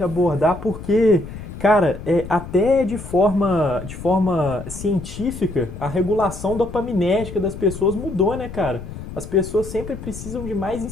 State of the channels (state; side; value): noise; left; rumble, 11 dB below the sound